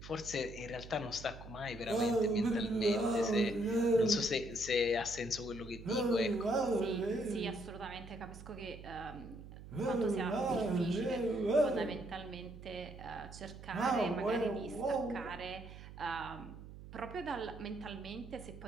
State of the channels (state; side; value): noise; right; hum, 14 dB below the sound